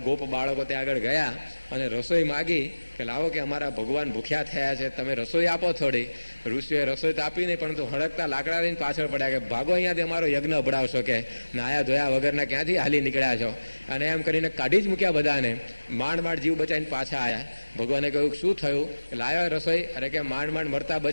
ગોપ બાળકો ત્યાં આગળ ગયા અને રસોઈ માગી કે લાવો કે અમારા ભગવાન ભૂખ્યા થયા છે, તમે રસોઈ આપો થોડી. ઋષિઓએ રસોઈ તો આપી નહીં, પરંતુ હળકતા લાકડા લઈને પાછળ પડ્યા કે ભાગો અહીંયાથી અમારો યજ્ઞ અભડાવશો, કે નાયા ધોયા વગરના ક્યાંથી હાલી નીકળ્યા છો. અને એમ કરીને કાઢી જ મૂક્યા બધાને. માંડ માંડ જીવ બચાવીને પાછા આવ્યા. ભગવાને કહ્યું શું થયું? લાવ્યો રસોઈ? અરે કે માંડ માંડ મરતા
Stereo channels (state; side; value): inverted; both; correlation -1.00